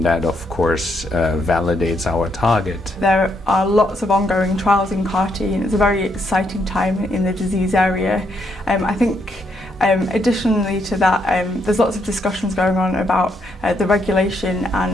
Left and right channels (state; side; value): normal; both; correlation 0.76